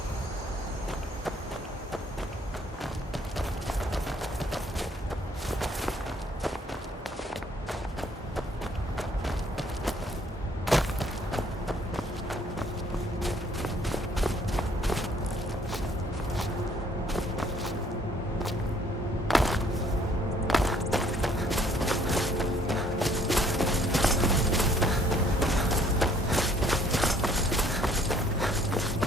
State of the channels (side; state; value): both; normal; correlation 0.62